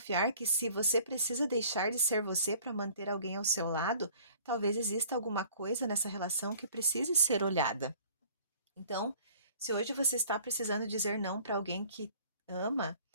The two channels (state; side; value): inverted; both; correlation -0.51